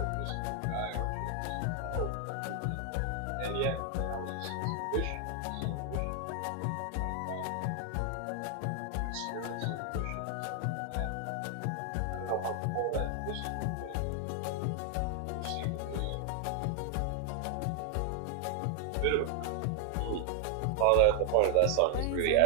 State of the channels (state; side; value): different; both; correlation 0.00